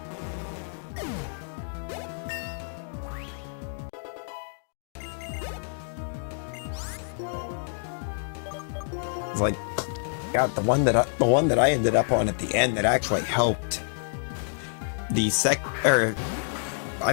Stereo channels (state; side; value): silent; right; digital silence